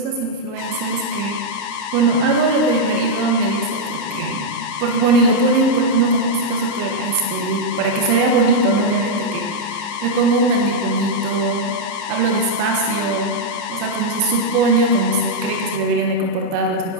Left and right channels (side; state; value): left; late; 29 ms